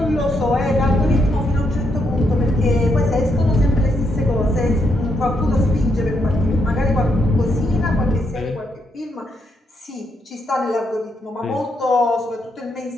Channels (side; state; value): both; normal; correlation 0.78